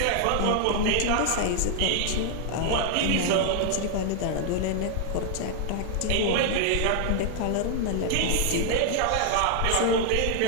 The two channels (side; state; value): both; different; correlation 0.00